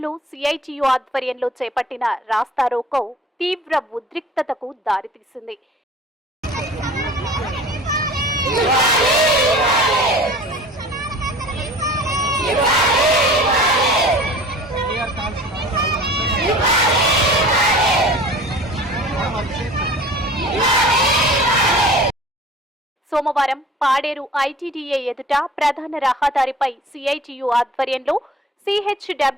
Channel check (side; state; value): both; normal; correlation 0.44